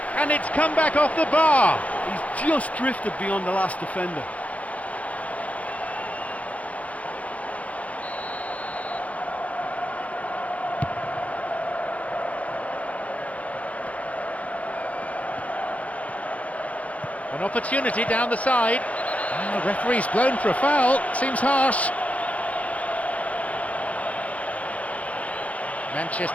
and it's come back off the bar. He's just drifted beyond the last defender. An opportunity down the side. And the referee's blown for a foul. Seems harsh.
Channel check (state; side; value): late; right; 0.067 ms